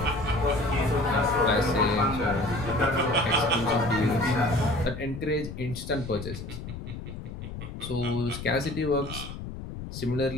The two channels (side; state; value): left; noise; rumble, 9 dB below the sound